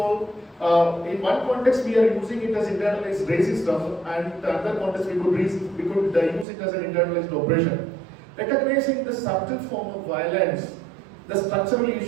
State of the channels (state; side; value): drops out; left; at 6.5 s